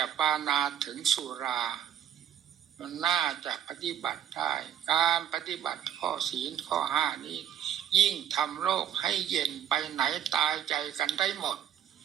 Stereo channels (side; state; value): left; quieter; 9.9 dB